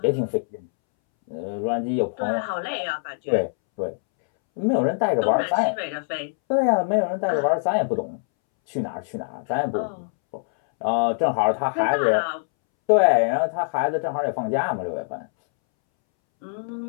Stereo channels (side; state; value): right; silent; 63 dB below the other